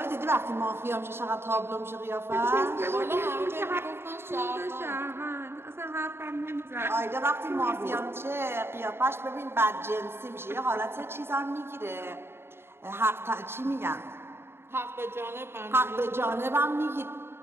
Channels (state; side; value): late; left; 0.11 ms